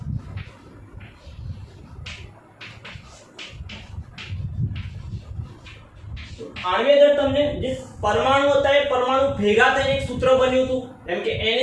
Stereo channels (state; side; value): identical; both; correlation 1.00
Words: આણ્વીય દળ તમને જે પરમાણુ હતા એ પરમાણુ ભેગા થઈને એક સૂત્ર બન્યું હતું. જેમ કે